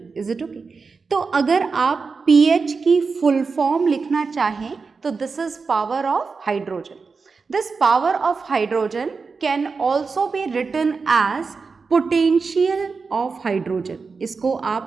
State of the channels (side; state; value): left; quieter; 4.7 dB